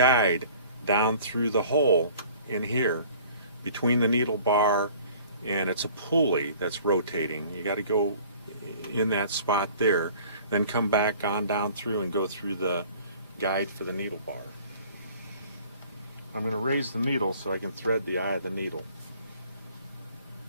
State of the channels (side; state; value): both; inverted; correlation -0.52